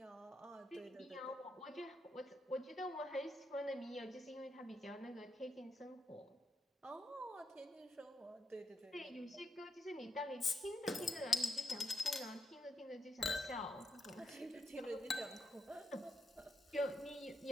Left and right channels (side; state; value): both; normal; correlation 0.81